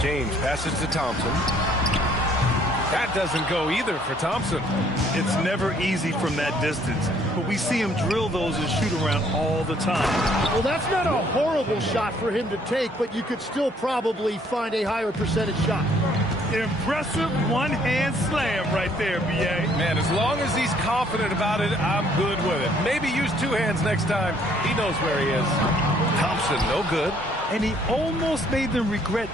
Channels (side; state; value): both; normal; correlation 0.63